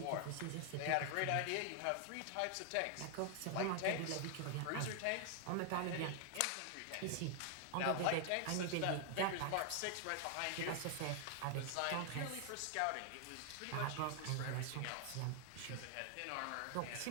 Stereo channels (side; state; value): both; different; correlation 0.00